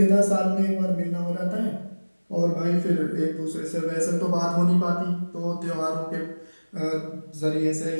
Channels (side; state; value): both; inverted; correlation -1.00